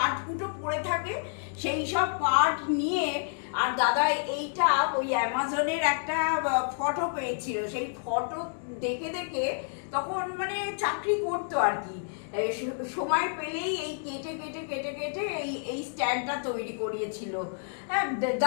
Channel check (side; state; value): right; silent; digital silence